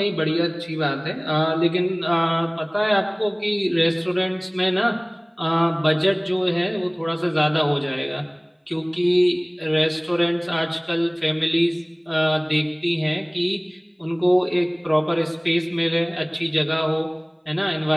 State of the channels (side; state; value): both; identical; correlation 1.00